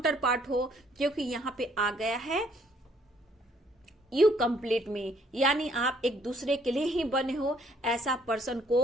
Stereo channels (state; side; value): normal; both; correlation 0.65